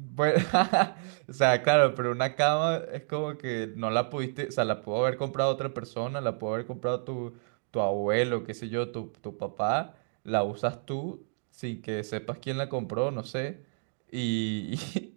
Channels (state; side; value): silent; left; digital silence